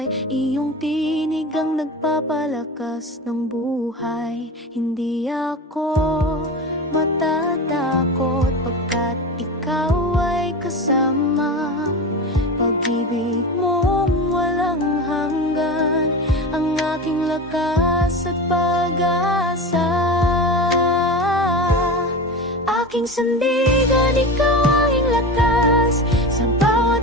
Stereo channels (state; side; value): normal; both; correlation 0.27